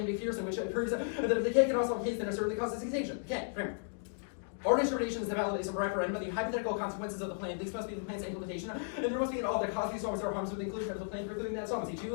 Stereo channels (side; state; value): right; silent; digital silence